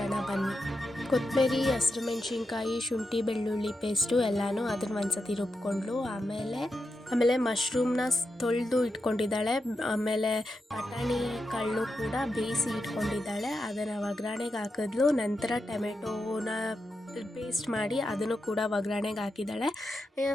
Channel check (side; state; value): both; normal; correlation 0.87